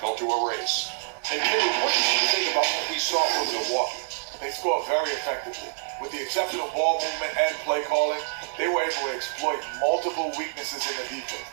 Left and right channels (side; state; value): left; silent; digital silence